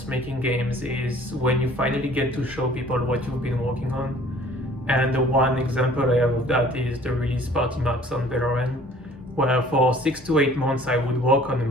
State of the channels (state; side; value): normal; both; correlation 0.52